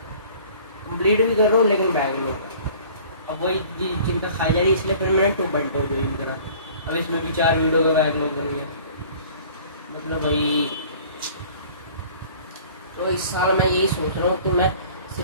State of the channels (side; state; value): both; inverted; correlation -0.49